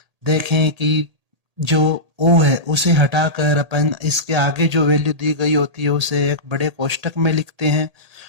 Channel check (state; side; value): late; left; 1.8 ms